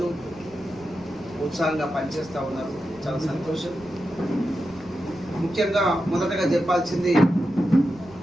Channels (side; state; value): right; noise; rumble, 23 dB below the sound